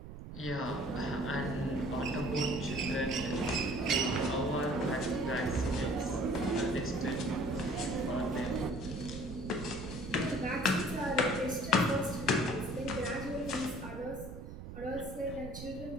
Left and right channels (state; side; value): noise; right; rumble, 10 dB below the sound